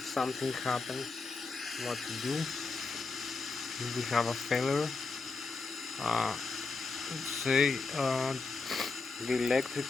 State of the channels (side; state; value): right; quieter; 4.2 dB